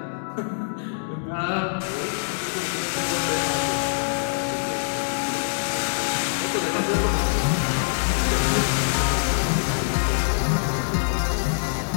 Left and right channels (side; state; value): right; silent; digital silence